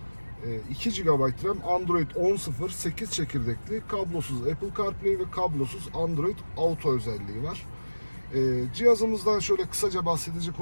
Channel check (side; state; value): both; inverted; correlation -1.00